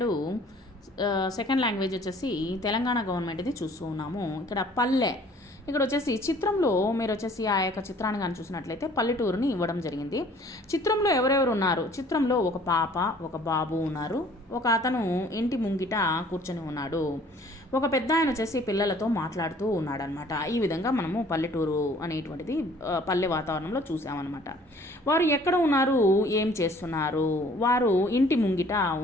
second language వచ్చేసి తెలంగాణ గవర్నమెంట్ది చూస్తూ ఉన్నాము. ఇక్కడ పల్లె, ఇక్కడ వచ్చేసి చిత్రంలో మీరు వచ్చేసి ఆ యొక్క చిత్రాన్ని కానీ చూసినట్లయితే పల్లెటూరుని ఇవ్వడం జరిగింది. చిత్రంలో ఎవరెవరు ఉన్నారు? చిత్రంలో ఒక పాప, ఒక బాబు ఉన్నారు. ఒక అతను ఇంటి ముంగిట కూర్చొని ఉన్నాడు. ఒక పెద్ద ఆయన వచ్చేసి పిల్లలతో మాట్లాడుతూ ఉన్నాడనమాట. ఈ విధంగా మనము పల్లెటూరు అనేటువంటిది పల్లె వాతావరణంలో చూసామన్నమాట. వారు ఎక్కడ ఉన్నారు, ఏం చేస్తున్నారు? వారు ఇంటి ముంగిట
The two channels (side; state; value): both; normal; correlation 0.54